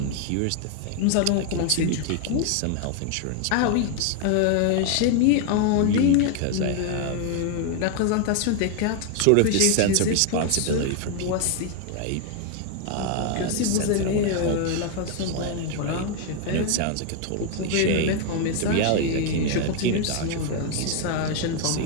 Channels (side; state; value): both; different; correlation 0.00